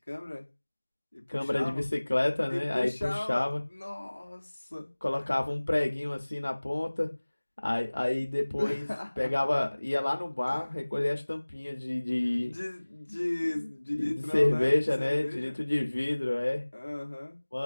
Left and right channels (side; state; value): both; inverted; correlation -1.00